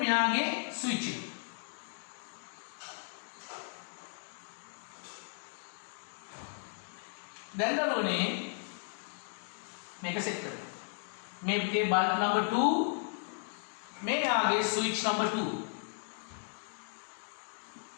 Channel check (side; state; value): right; silent; 54 dB below the other